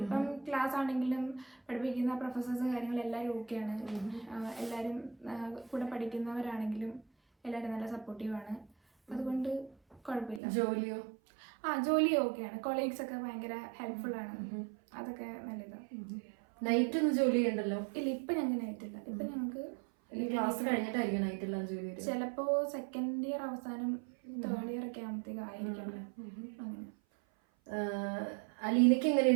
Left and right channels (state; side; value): drops out; left; at 10.4 s